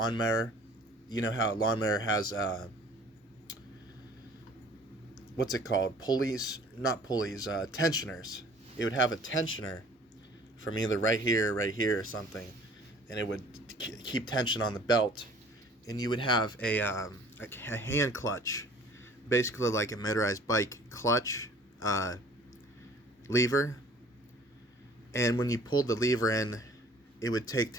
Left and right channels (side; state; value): both; normal; correlation 0.51